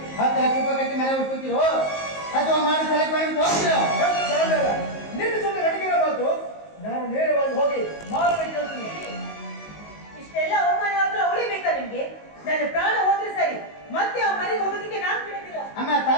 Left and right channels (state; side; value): late; right; 19 ms